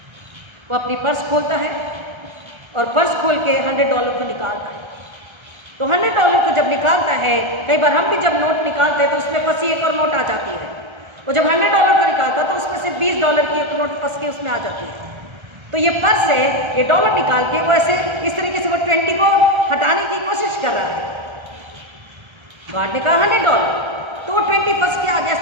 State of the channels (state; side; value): late; left; 1.3 ms